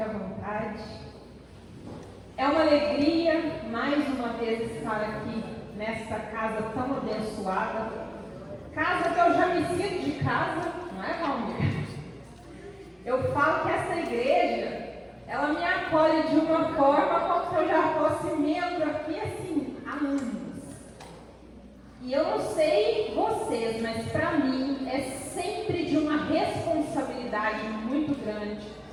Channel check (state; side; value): identical; both; correlation 1.00